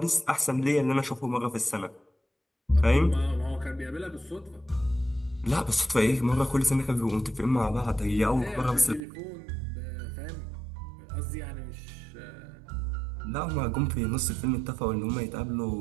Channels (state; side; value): drops out; left; at 9.0 s